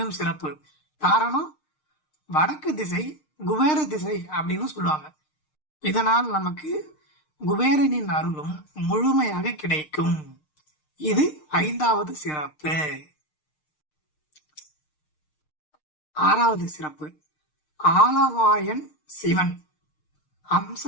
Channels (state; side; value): late; right; 6.6 ms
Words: சிறப்பு. காரணம், வடக்கு திசை குபேர திசை அப்படின்னு சொல்லுவாங்க. இதனால் நமக்கு குபேரனின் அருளும் முழுமையாக கிடைக்கும். இது 5வது சிறப்பு. 6வது சிறப்பு, ஆலவாயன் சிவன்